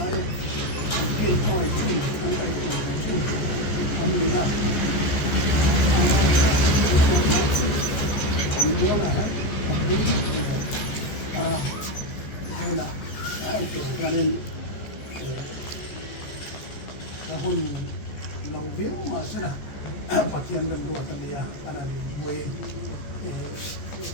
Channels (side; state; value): right; late; 14 ms